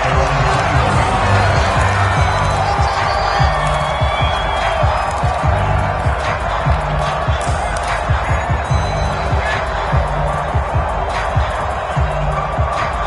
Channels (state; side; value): identical; both; correlation 1.00